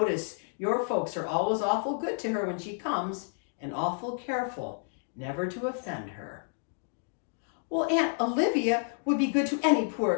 your folks are always awful good to her when she comes, and awful careful never to offend her. Well, Aunt Olivia would be good to any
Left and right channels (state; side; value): silent; right; 58 dB below the other